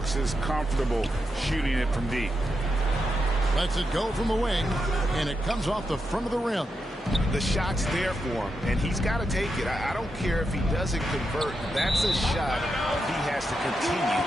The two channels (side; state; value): both; normal; correlation 0.85